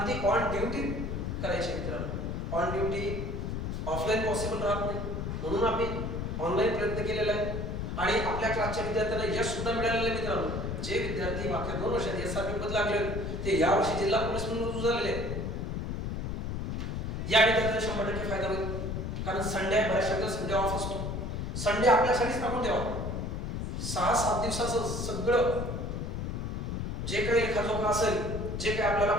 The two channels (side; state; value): left; noise; rumble, 3 dB below the sound